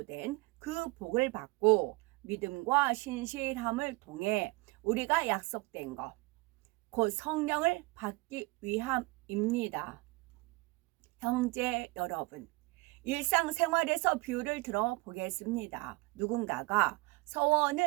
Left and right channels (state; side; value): quieter; left; 24.6 dB